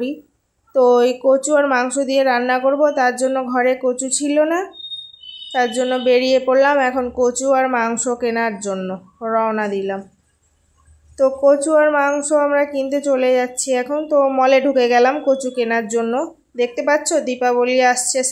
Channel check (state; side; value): identical; both; correlation 1.00